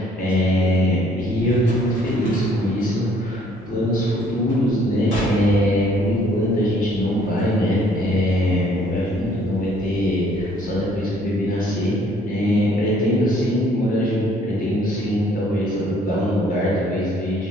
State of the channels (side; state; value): both; normal; correlation 0.61